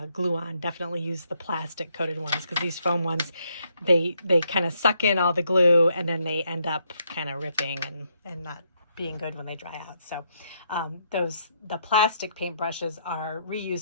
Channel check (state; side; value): inverted; both; correlation -0.75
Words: glue on, definitely use the plastic coated ones, because these foam ones, they kind of suck in all the glue and then they end up kind of ripping and not being good when they dry out. So the plastic paintbrushes are